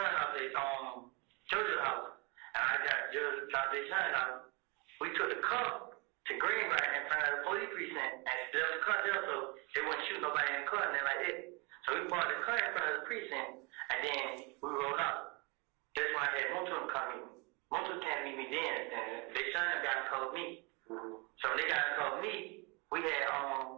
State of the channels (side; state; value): left; quieter; 29.6 dB